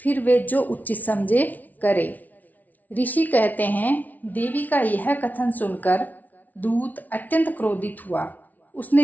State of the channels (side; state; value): right; late; 0.077 ms